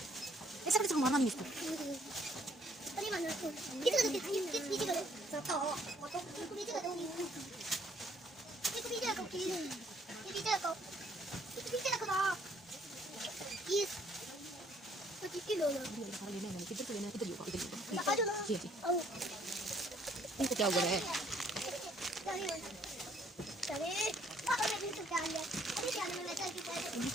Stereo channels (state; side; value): normal; both; correlation 0.64